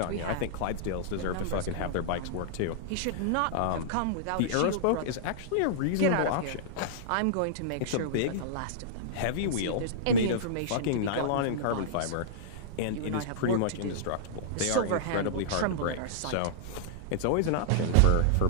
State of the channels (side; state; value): both; different; correlation -0.02